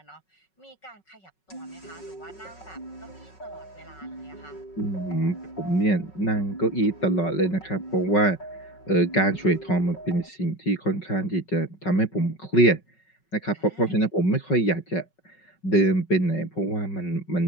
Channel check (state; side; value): late; right; 5.4 ms